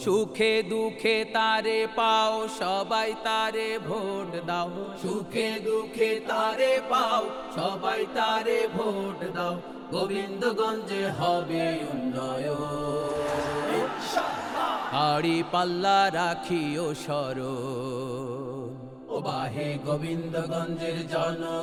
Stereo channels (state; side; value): identical; both; correlation 1.00